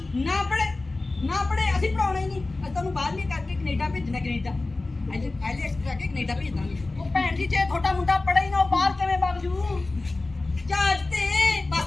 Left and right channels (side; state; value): right; quieter; 3.2 dB